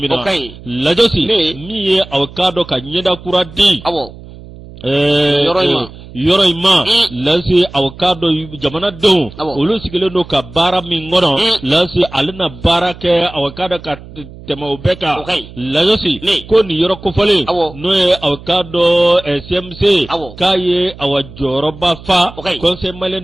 na lajɔsi min ye aw ka dɔn ka ɲɛda kura di yɔrɔ in ma lase aw ka dɔn jamanadenw olu sigilen don ka baara min kɔnɔ lase ale na baara kɛ aw ka dɔn ka tɛmɛ o bɛɛ kan lajɔsi ko nin yɔrɔ kofɔlen n'o ye aw ka dɔn CMC k'a ye aw jɔyɔrɔba fa conseil malien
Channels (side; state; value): right; noise; hum, 17 dB below the sound